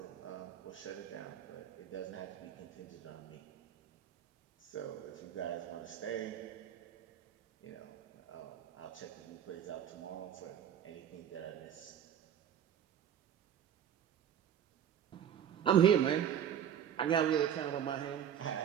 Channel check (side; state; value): left; quieter; 9.4 dB